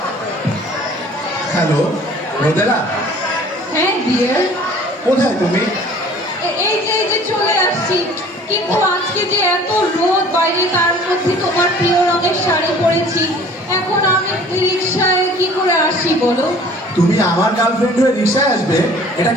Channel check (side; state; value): both; normal; correlation 0.50